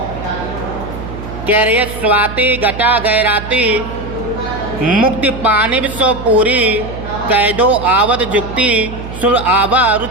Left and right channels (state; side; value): noise; right; hum, 10 dB below the sound